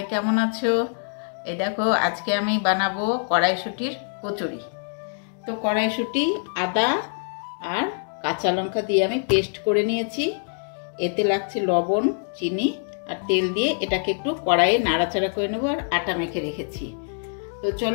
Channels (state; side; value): silent; right; digital silence